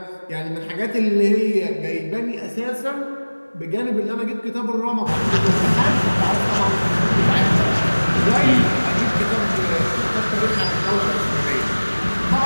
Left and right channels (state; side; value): inverted; both; correlation -1.00